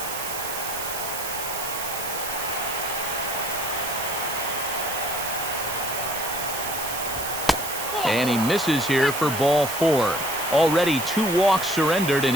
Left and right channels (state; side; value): noise; right; hiss, 6 dB below the sound